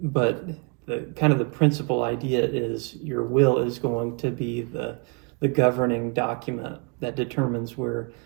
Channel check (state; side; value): quieter; left; 32.3 dB